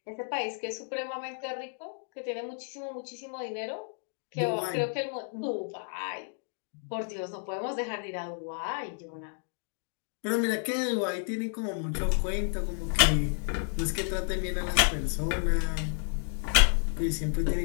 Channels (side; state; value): right; silent; 57 dB below the other